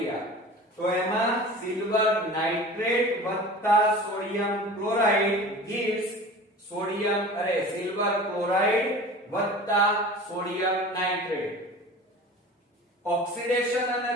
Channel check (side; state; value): both; normal; correlation 0.38